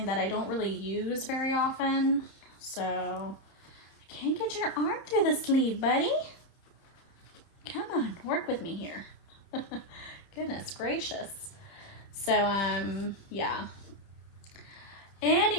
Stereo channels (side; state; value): right; late; 30 ms